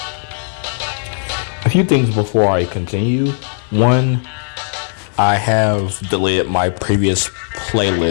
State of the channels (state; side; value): silent; right; digital silence